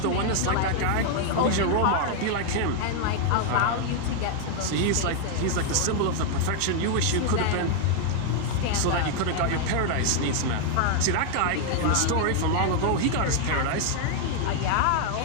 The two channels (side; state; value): both; different; correlation 0.00